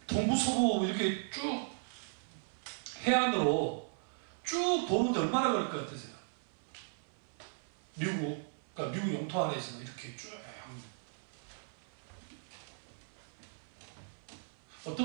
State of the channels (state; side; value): silent; left; 53 dB below the other